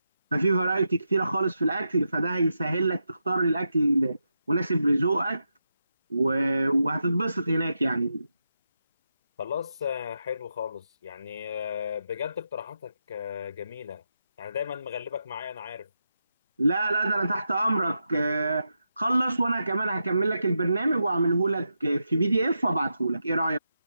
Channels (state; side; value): inverted; both; correlation -0.86